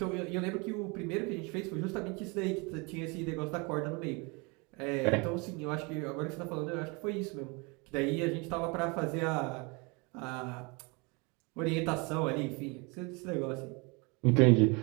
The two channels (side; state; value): left; quieter; 29.4 dB